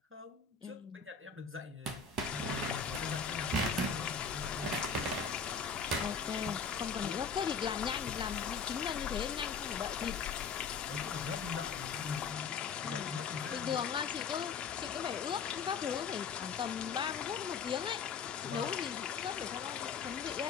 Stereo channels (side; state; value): right; quieter; 5.6 dB